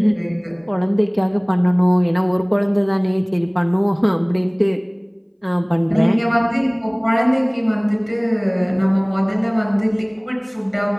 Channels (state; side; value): identical; both; correlation 1.00